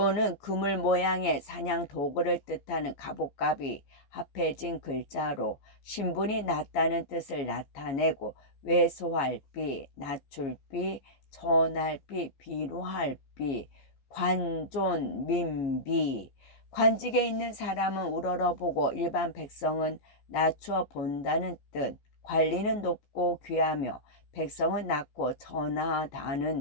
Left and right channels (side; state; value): right; late; 15 ms